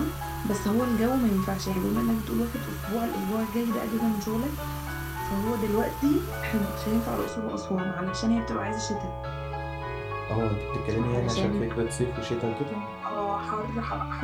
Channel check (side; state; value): both; identical; correlation 1.00